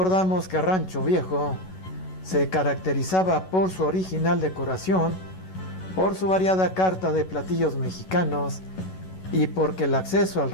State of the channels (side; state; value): right; late; 11 ms